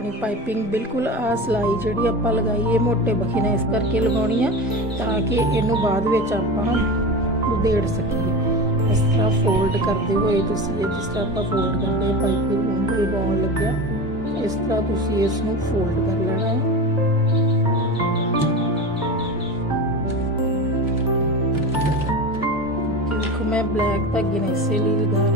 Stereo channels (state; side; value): normal; both; correlation 0.28